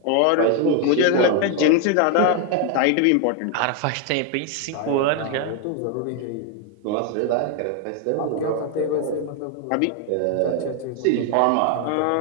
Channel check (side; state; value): both; different; correlation 0.01